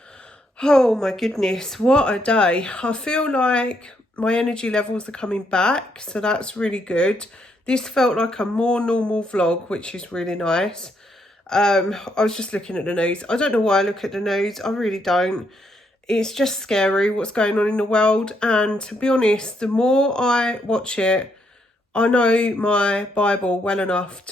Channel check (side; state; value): both; normal; correlation 0.75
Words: Oh my goodness, what a day. I feel like my energy levels are coming back, so that's really good. This felt like a more normal vlog, which is really nice. I was just looking at the news. I don't know why I look at the news, I really don't. It's just scary what's going on in the world, and to be honest, the more I watch it, I know my Bible well enough